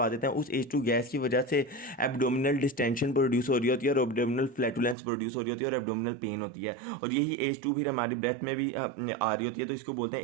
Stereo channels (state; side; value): drops out; left; at 5.0 s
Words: देते हैं। उस एच टू गैस की वजह से एब्डोमिनल डिस्टेंशन प्रोड्यूस हो रही होती है, और एब्डोमिनल फ्लैटुलेंस प्रोड्यूस हो रही होती है, और एब्डोमिनल पेन होती है, और यही एच टू फिर हमारी ब्रेथ में भी आ रही होती है, तो इसको बोलते हैं